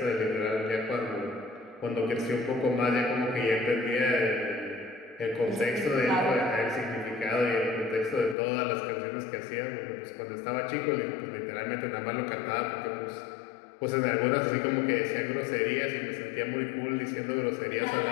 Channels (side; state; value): right; drops out; at 8.3 s